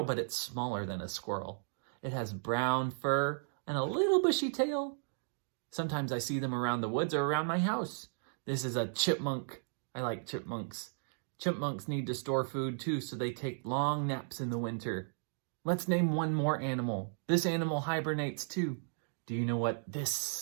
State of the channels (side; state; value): left; silent; digital silence